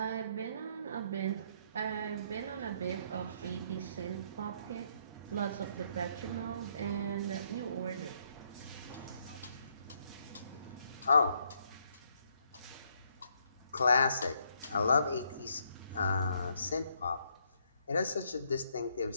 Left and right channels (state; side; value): inverted; both; correlation -0.72